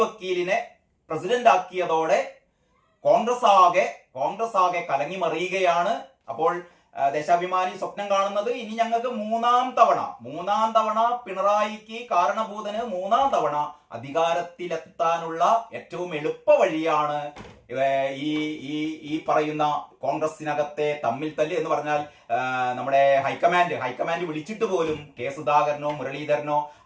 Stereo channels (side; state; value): both; identical; correlation 1.00